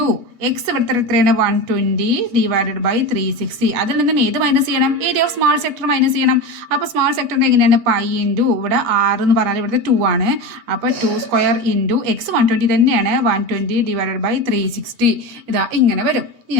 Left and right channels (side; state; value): left; late; 8.3 ms